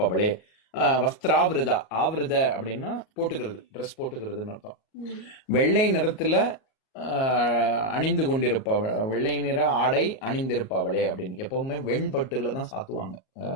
வஸ்திராவிருதா, ஆவிருத அப்படின்னா போட்டுக்கிறது, ட்ரெஸ் போட்டுக்கிறதுன்னு அர்த்தம். வெள்ளை நிறத்துல அணிந்து கொண்டிருப்பவள், வெள்ளை நிற ஆடை அணிந்திருப்பவளே அப்படின்னு. எப்பவுமே வெண்பட்டுல தான் சாத்துவாங்க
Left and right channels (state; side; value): late; right; 38 ms